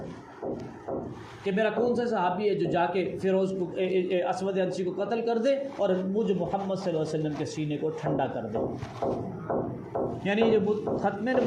کہ میرا کون سا صحابی ہے جو جا کے فیروز کو اسود عنسی کو قتل کر دے اور مجھ محمد صلی اللہ علیہ وسلم کے سینے کو ٹھنڈا کر دے. یعنی جو ختم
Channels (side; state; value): both; identical; correlation 1.00